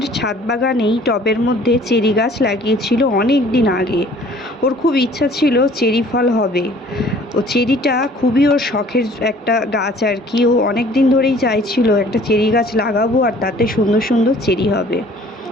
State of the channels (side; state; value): both; normal; correlation 0.53